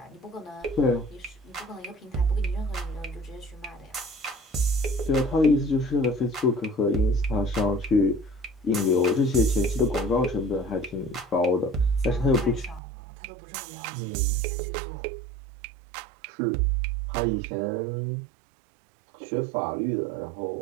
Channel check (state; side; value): drops out; left; at 12.8 s